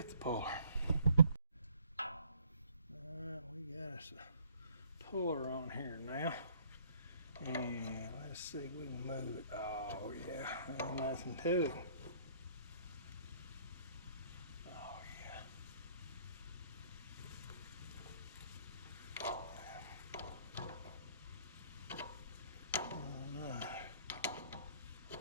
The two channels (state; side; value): inverted; both; correlation -0.61